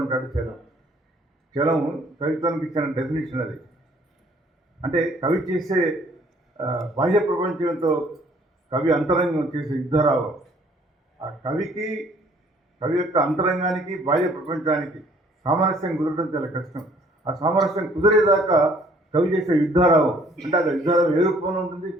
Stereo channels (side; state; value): both; normal; correlation 0.59